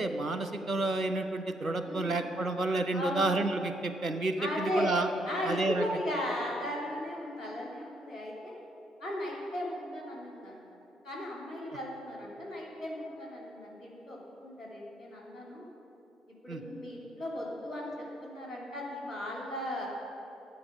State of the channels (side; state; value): both; normal; correlation 0.72